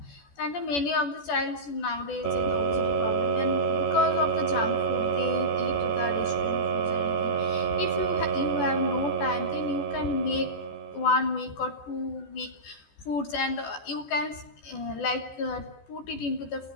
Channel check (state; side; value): late; right; 14 ms